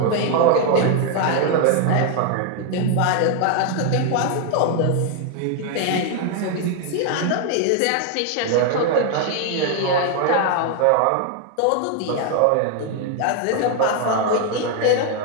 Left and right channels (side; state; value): both; different; correlation 0.01